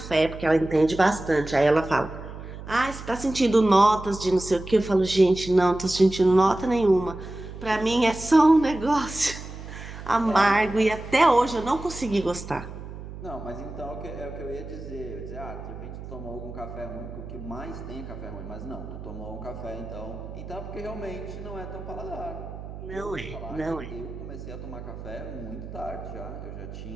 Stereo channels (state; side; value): noise; right; hum, 12 dB below the sound